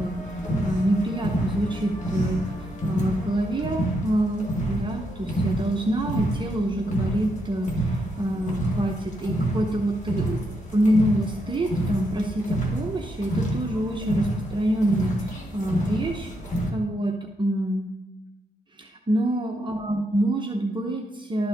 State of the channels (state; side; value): normal; both; correlation 0.80